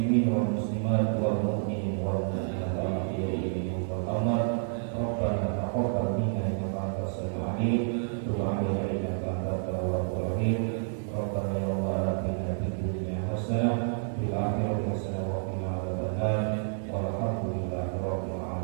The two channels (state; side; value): silent; left; digital silence